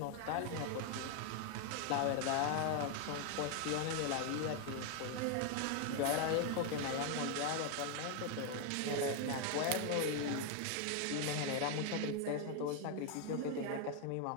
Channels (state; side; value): different; both; correlation 0.01